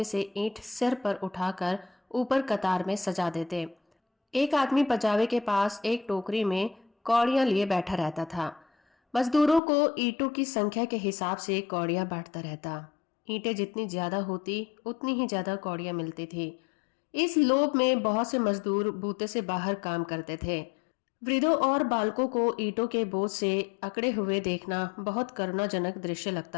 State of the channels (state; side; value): drops out; right; at 9.6 s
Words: से ईंट सिर पर उठाकर ऊपर कतार में सजा देते। एक आदमी पजावे के पास एक टोकरी में कौड़ियां लिए बैठा रहता था। मजदूरों को ईंटों की संख्या के हिसाब से कौड़ियां बांटता रहता। ईंटें जितनी ज्यादा होती उतनी ही ज्यादा कौड़ियां मिलती थी। इस लोभ में बहुत से मजदूर बूते से बाहर काम करते थे। वृद्धों और बालकों को ईंटों के बोझ से अकड़े हुए देखना बहुत करुणाजनक दृश्य